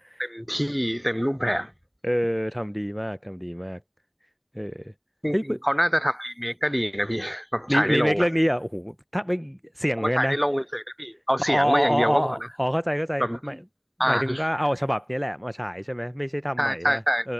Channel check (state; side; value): identical; both; correlation 1.00